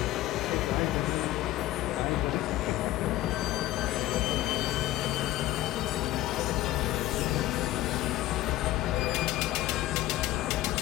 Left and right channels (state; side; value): quieter; right; 15.6 dB